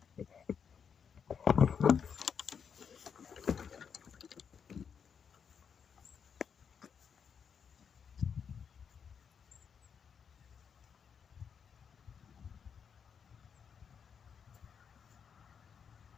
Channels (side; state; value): right; quieter; 6.9 dB